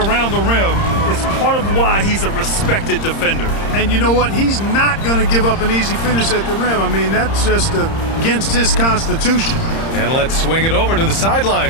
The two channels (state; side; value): late; right; 30 ms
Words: the rim is part of why he's a respected defender. And you know what? He's not going to give up an easy finish at the rim. I mean, that's just against his constitution. And let's swing it over to the